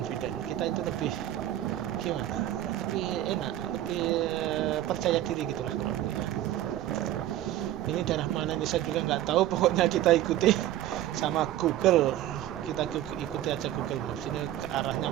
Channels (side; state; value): left; quieter; 13.2 dB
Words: kita itu lebih gimana, lebih enak, lebih percaya diri gitulah kurang lebih. Ini daerah mana ini saya juga nggak tahu, pokoknya kita ikuti sama Google, kita ikuti aja Google Maps, ini ke arahnya